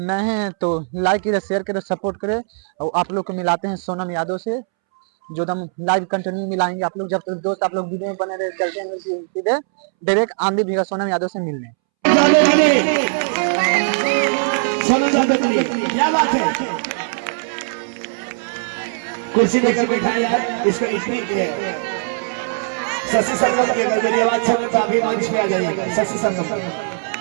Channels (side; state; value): left; silent; 66 dB below the other